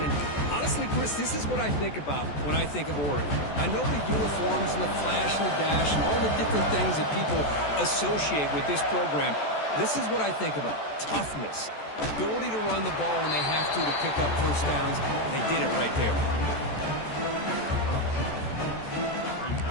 And honestly, Chris, this is what I think about when I think of Oregon. I know the uniforms and the flash and the dash and all the different things that people associate with this program. This is what I think about. Toughness. Ability to run the ball when they have to pick up first downs. They did it right there.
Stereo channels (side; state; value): right; late; 14 ms